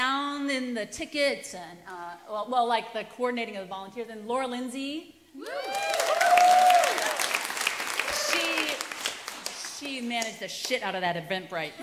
and the tickets and like the coordinating of the volunteers. And Laura Lindsay. She managed the shit out of that Eventbrite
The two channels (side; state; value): both; identical; correlation 1.00